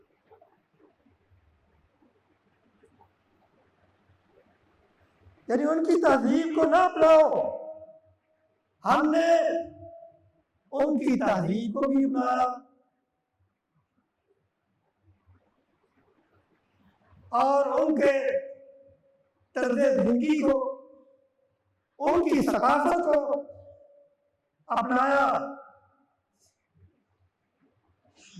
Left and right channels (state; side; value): identical; both; correlation 1.00